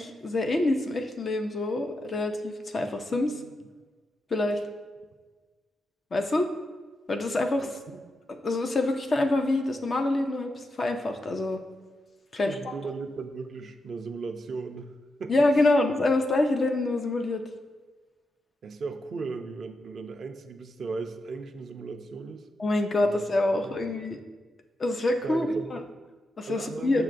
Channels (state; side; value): normal; both; correlation 0.86